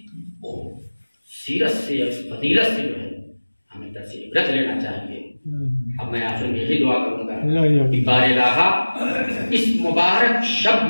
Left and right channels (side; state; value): both; inverted; correlation -1.00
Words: سیرت سے اس فضیلت سے جو ہے ہمیں درس عبرت لینا چاہیے. اب میں آخر میں یہی دعا کروں گا کہ بار الہ اس مبارک شب